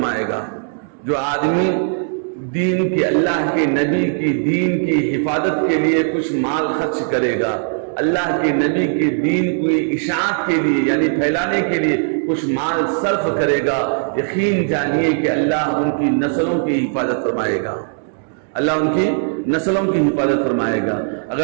گا۔ جو آدمی دین کی، اللہ کے نبی کی دین کی حفاظت کے لیے کچھ مال خرچ کرے گا، اللہ کے نبی کے دین کی اشاعت کے لیے یعنی پھیلانے کے لیے کچھ مال صرف کرے گا، یقین جانیے کہ اللہ ان کی نسلوں کی حفاظت فرمائے گا، اللہ ان کی نسلوں کی حفاظت فرمائے گا۔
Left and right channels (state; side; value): silent; left; digital silence